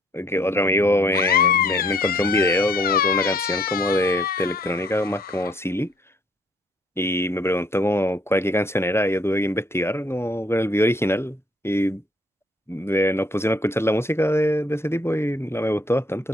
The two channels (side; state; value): both; normal; correlation 0.64